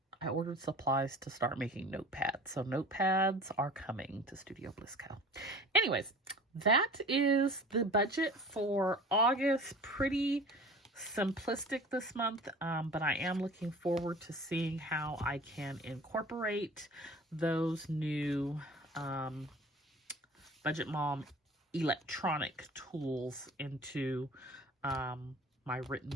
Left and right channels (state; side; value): normal; both; correlation 0.42